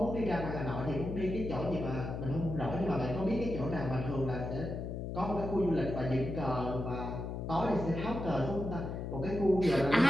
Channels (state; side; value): noise; left; hum, 5 dB below the sound